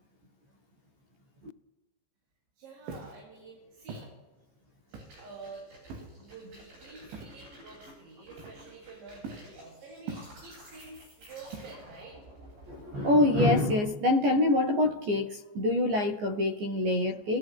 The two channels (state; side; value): late; left; 14 ms